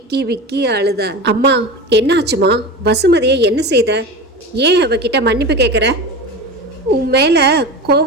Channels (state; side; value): normal; both; correlation 0.28